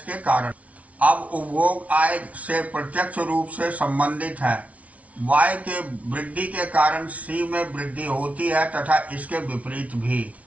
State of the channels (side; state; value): left; late; 0.067 ms